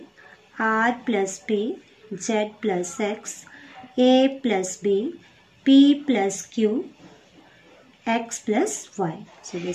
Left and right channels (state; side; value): identical; both; correlation 1.00